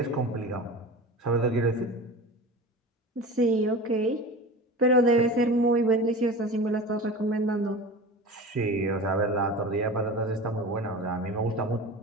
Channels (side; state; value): both; normal; correlation 0.33